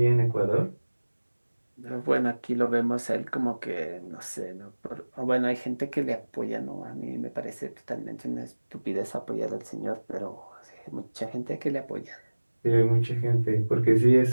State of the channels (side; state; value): both; inverted; correlation -1.00